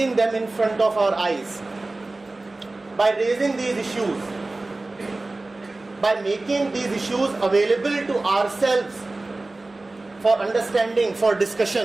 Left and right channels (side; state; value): left; quieter; 3.1 dB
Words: them in front of our eyes, by raising these issues, by making these issues available to ourselves for understanding, for